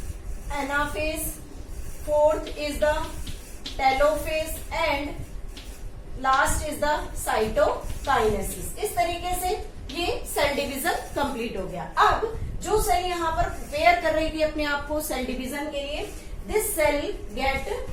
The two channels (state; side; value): identical; both; correlation 1.00